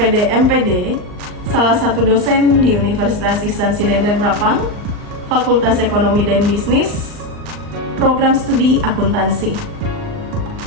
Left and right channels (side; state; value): left; late; 39 ms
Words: MPD, salah satu dosen di Universitas Ihsan Sidenreng Rapang, Fakultas Ekonomi dan Bisnis, Program Studi Akuntansi.